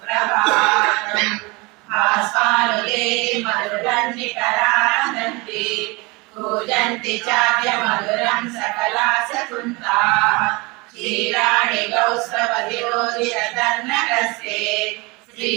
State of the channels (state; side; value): quieter; left; 26.0 dB